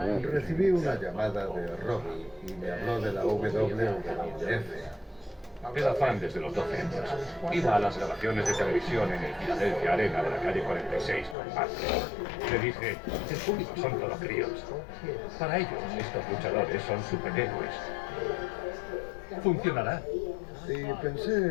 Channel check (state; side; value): drops out; right; at 11.4 s